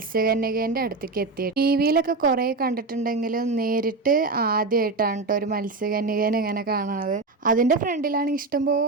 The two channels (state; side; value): quieter; left; 3.7 dB